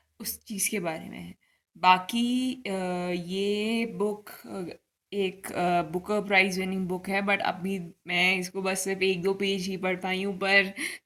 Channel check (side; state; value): both; identical; correlation 1.00